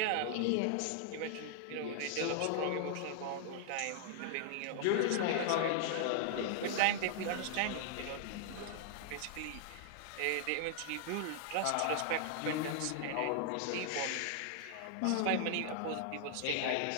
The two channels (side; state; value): both; different; correlation 0.00